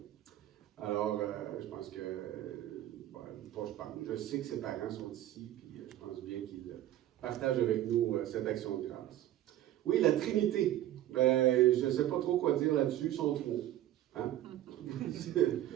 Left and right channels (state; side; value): quieter; left; 13.2 dB